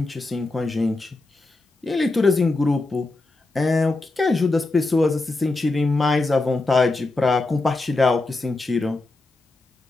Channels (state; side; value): quieter; right; 3.2 dB